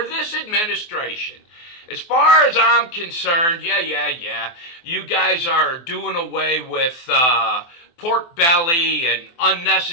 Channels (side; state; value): right; late; 24 ms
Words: this administration. As far as I'm concerned, you guys are doing away with pork belly and